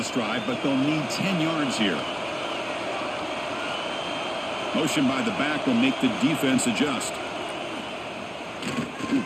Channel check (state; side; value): identical; both; correlation 1.00